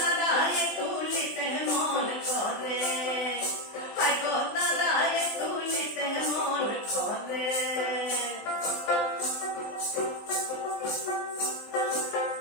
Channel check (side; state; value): right; late; 20 ms